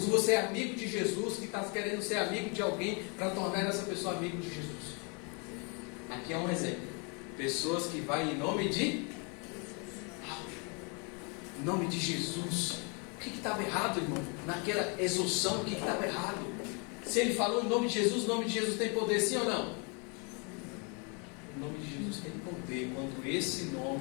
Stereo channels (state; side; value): quieter; right; 34.3 dB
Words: ou você é amigo de Jesus que está querendo ser amigo de alguém para tornar essa pessoa amigo de Jesus? Aqui é um exemplo. Pessoas que vão em nome de Jesus. O que estava errado, irmão? Naquela exorção, o que estava errado? Se ele falou em nome de Jesus, o nome de Jesus tem poder, sim ou não? O nome de Jesus tem poder quando esse